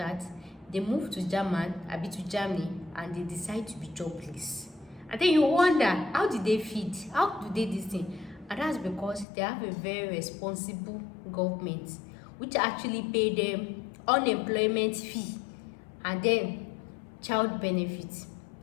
They move to Germany, and they decide to be jobless. And then you wonder, how did they feed? How do they this thing? And that's because they have a very responsible government, which actually pay them unemployment fee and then child benefits.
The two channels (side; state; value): right; drops out; at 9.2 s